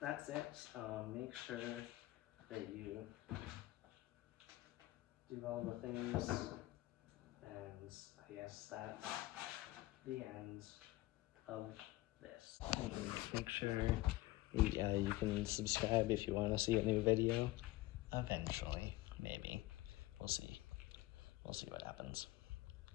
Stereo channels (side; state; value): right; quieter; 18.3 dB